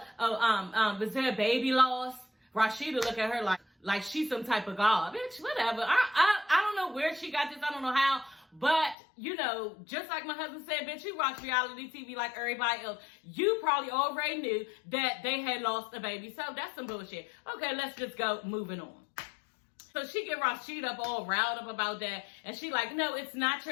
there a baby lost? Rashida look at her like she's some type of god. Bitch, whatever. I don't know where she got this. I don't know how. But, just like my husband said, bitch, you watch reality TV like everybody else. You probably already knew that they had lost a baby. So that's some bullshit. Okay, let's just go moving on. So she get Rashida up all riled up about that. And she like, no, it's not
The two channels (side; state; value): right; drops out; at 9.0 s